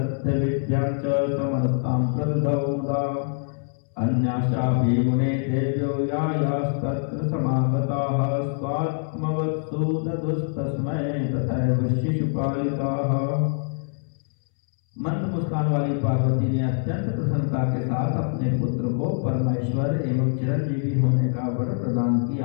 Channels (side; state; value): right; silent; 62 dB below the other